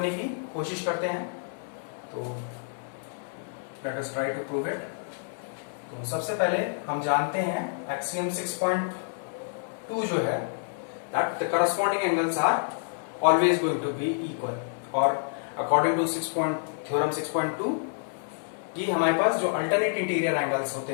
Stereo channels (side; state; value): right; silent; digital silence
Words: की कोशिश करते हैं। तो let us try to prove it. तो सबसे पहले हम जानते हैं एक्सियम 6.2 जो है, that the corresponding angles are always going to be equal, और according to थ्योरम 6.2 कि हमारे पास जो अल्टरनेट इंटीरियर एंगल्स होते